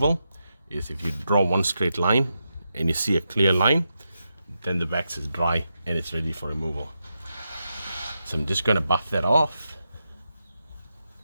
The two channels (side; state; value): both; inverted; correlation -0.87